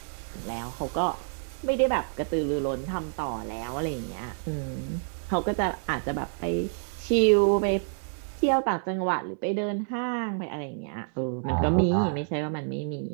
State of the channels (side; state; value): left; silent; 59 dB below the other